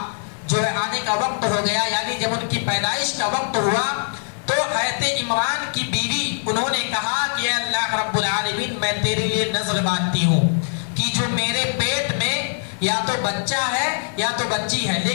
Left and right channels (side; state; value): right; silent; 56 dB below the other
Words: وقت ہو گیا, یعنی جب ان کی پیدائش کا وقت ہوا, تو حضرت عمران کی بیوی انہوں نے کہا کہ اے اللہ رب العالمین میں تیرے لیے نذر باندھتی ہوں کہ جو میرے پیٹ میں یا تو بچہ ہے یا تو بچی ہے,